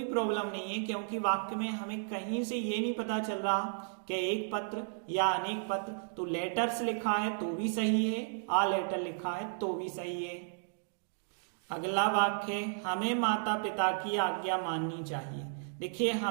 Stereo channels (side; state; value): left; silent; digital silence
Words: प्रॉब्लम नहीं है, क्योंकि वाक्य में हमें कहीं से ये नहीं पता चल रहा कि एक पत्र या अनेक पत्र। तो लेटर्स लिखा है तो भी सही है, आ लेटर लिखा है तो भी सही है। अगला वाक्य, हमें माता पिता की आज्ञा माननी चाहिए। देखिए